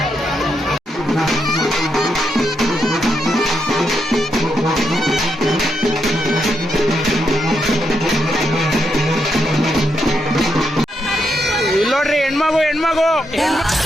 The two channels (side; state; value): both; normal; correlation 0.81